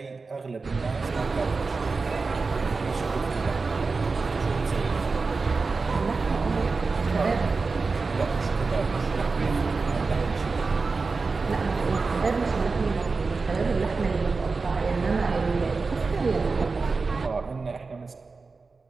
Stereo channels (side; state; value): left; quieter; 4.2 dB